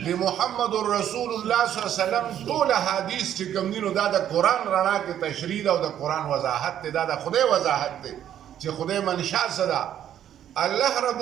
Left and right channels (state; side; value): quieter; left; 10.5 dB